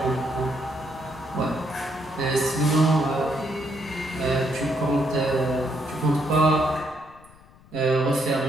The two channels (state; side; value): noise; left; rumble, 25 dB below the sound